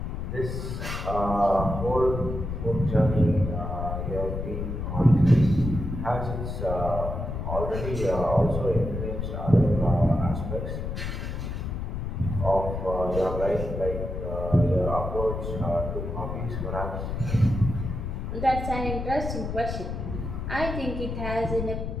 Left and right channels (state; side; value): noise; left; rumble, 4 dB below the sound